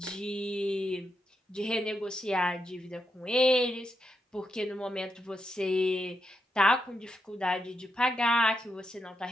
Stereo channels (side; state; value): both; normal; correlation 0.84